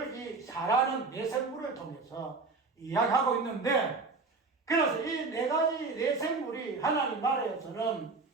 이 사라는 내생물을 통해서 이야기하고 있는데, 그래서 이 네 가지 내생물이 하나님 나라에서는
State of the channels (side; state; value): left; quieter; 4.0 dB